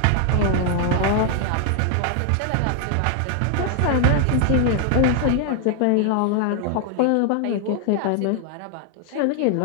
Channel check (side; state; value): both; different; correlation 0.00